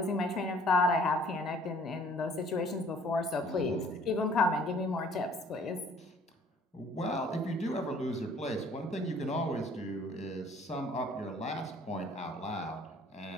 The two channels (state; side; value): normal; both; correlation 0.56